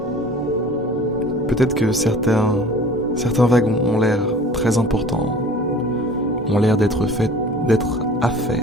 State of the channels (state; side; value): normal; both; correlation 0.45